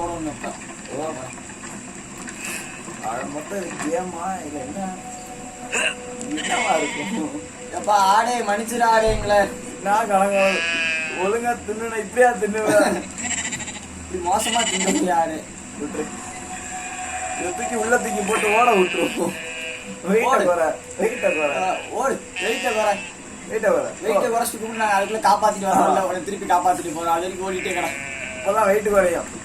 ஓடணும். இப்போ மொத்தம் கேமா இல்ல என்ன என்னவா இருக்கும்? எப்பா ஆடே மன்னிச்சிரு ஆடேங்களே. நான் கணங்க ஒழுங்கா தின்னுனா இப்படியா தின்னுவேன்? இப்படி மோசமா தின்னு ஆடு விட்டுரு. இதை தூக்கி உள்ள தூக்கி போட்டு ஓட விட்டுருவோம். வெயிட்ட குறை, வெயிட்ட குறை, ஓடு. வெயிட்ட குறை, வெயிட்ட குறை. வெயிட்ட குறைச்சிட்டு கூட நாங்கள் அதுக்குள்ள காப்பாத்திட்டு வரோம்ல, உடனே திருப்பி காப்பாத்திட்டு போறோம். அது வரைக்கும் ஓடிட்டே கடை. அப்பதான் வெயிட் குறையும்.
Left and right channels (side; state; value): both; identical; correlation 1.00